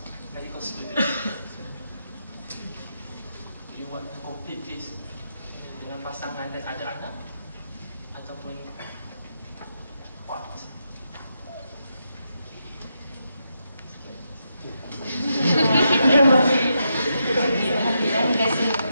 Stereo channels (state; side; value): inverted; both; correlation -0.83